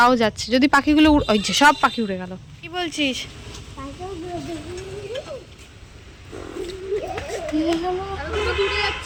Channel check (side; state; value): both; identical; correlation 1.00